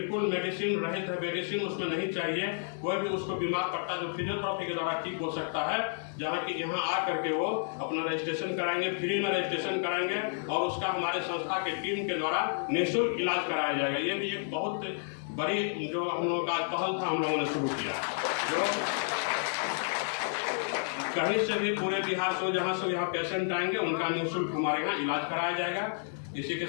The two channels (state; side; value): silent; right; digital silence